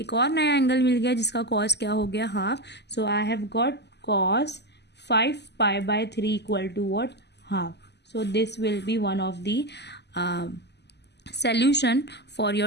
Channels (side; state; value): right; late; 0.50 ms